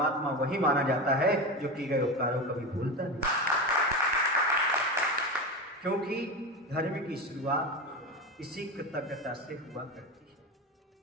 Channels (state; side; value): normal; both; correlation 0.22